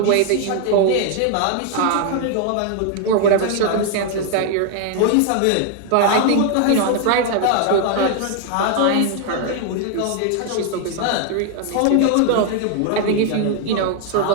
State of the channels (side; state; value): both; different; correlation 0.00